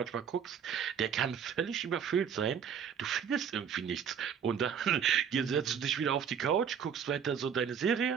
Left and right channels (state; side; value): quieter; left; 7.6 dB